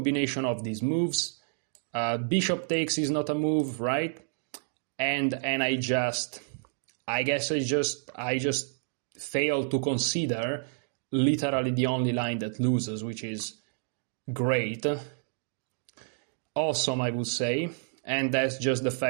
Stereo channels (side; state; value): left; silent; digital silence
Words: of these moves, bishop takes is not a move, right? And I just failed to consider literally the only line that loses, which is great. Awesome, I would say, and that's just the